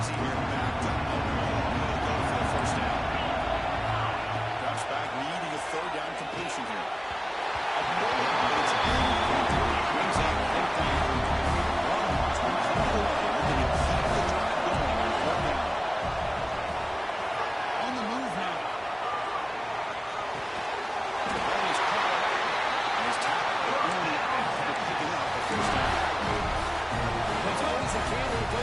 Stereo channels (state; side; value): identical; both; correlation 1.00